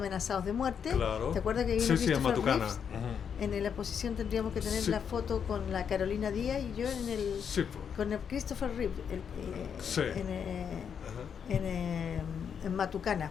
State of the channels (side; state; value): right; quieter; 7.4 dB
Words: de muerte. Claro. ¿Te acuerdas que vino Sí, en Christopher Matucana. Reeves? Ujú. En la exposición tendríamos que tener Sí. la foto con la Carolina Díaz y yo Sí, con el Christopher Reeves Sí. Ajá. en Matucana,